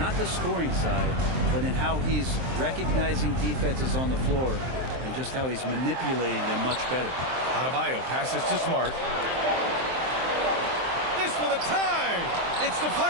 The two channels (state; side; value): late; left; 23 ms